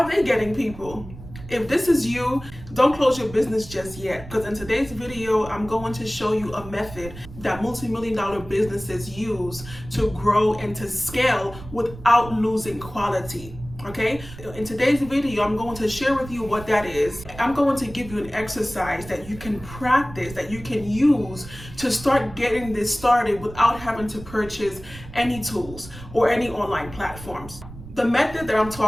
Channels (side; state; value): right; noise; rumble, 15 dB below the sound